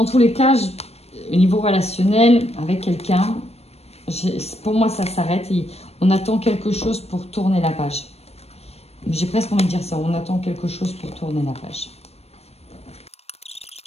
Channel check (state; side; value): late; right; 0.30 ms